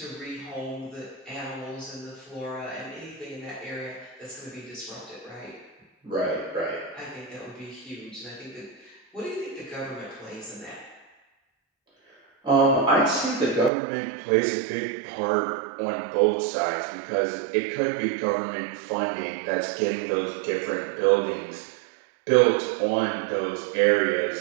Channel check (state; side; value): drops out; left; at 13.7 s